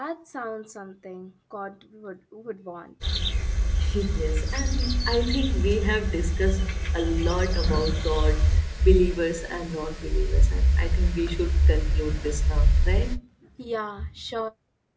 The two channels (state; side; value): identical; both; correlation 1.00